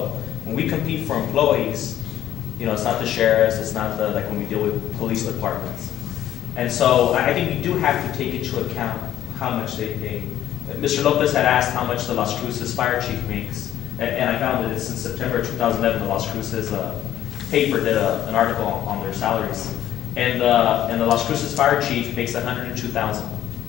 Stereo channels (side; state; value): right; quieter; 11.7 dB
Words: when we compete for employees, you know, it's not the sheriffs, it's not the, like when we deal with police departments. And so I think we do have to take into account how much they pay. Mr. Lopez had asked how much the Las Cruces fire chief makes, and I found that it's in September 2011, the Las Cruces paper did an article on their salaries. And the Las Cruces fire chief makes $102,000.